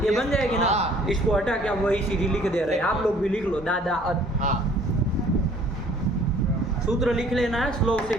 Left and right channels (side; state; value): both; normal; correlation 0.56